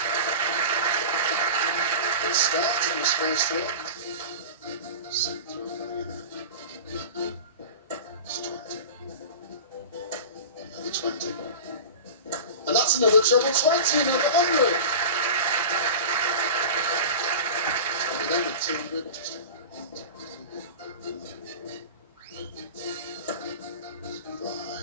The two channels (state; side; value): inverted; both; correlation -0.32